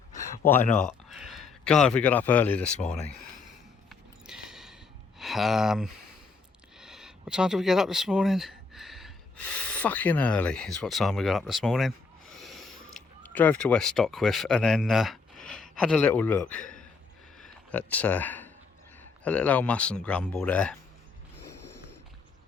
Why not? God, we got up early this morning. What time did we get up this morning? Fucking early is what time we got up this morning. Drove to West Stockwith and then had a little look at a little old MUSN Grumble there,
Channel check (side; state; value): right; quieter; 4.7 dB